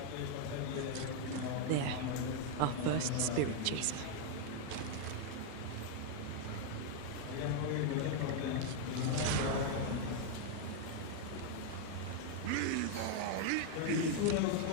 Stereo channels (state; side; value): different; both; correlation 0.00